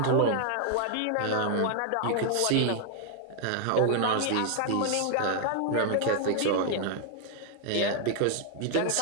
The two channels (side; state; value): both; different; correlation 0.00